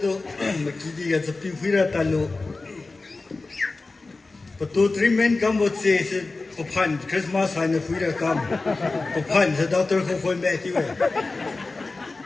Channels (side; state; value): right; quieter; 3.5 dB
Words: တော့မကြည့်ရစပီဖီရတလို့ပတူထရီမန်ကမ်ဘောချေစပဖန်ခရစ်မတ်ဆိုင်ဖီရကမ်ပဖန်ဇဒေါက်တာခိုဖွင့်မဲ့တီဝဲ